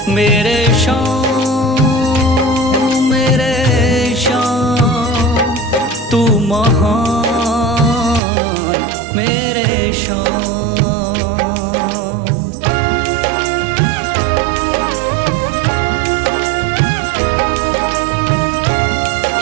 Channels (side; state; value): left; drops out; at 8.2 s